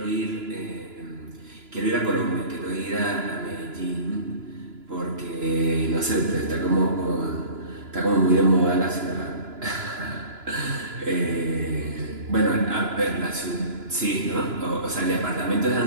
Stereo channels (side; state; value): left; late; 2.9 ms